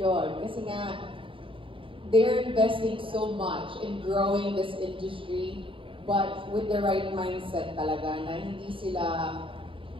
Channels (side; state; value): left; late; 0.25 ms